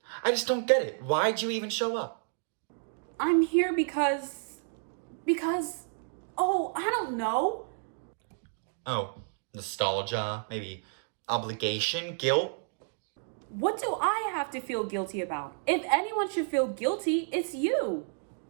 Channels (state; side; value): silent; left; digital silence